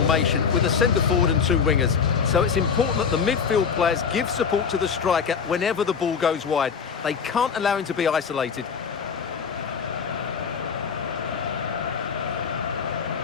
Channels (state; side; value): quieter; right; 6.3 dB